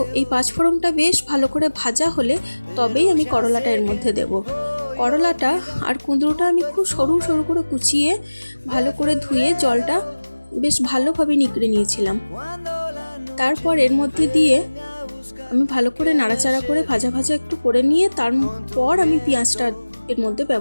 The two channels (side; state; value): both; inverted; correlation -1.00